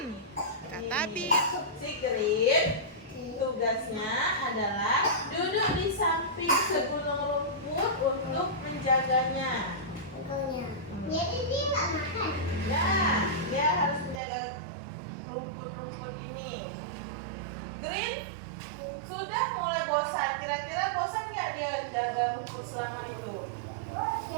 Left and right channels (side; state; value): left; drops out; at 14.2 s